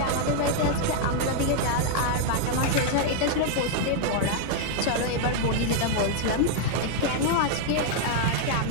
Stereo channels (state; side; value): different; both; correlation 0.00